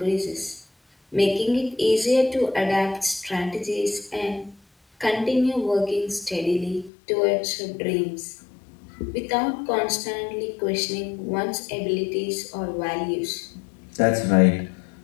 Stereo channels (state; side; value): drops out; right; at 6.9 s